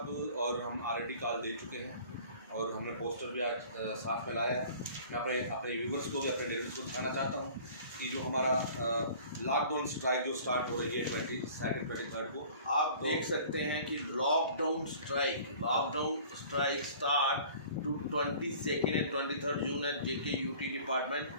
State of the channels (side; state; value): both; inverted; correlation -0.48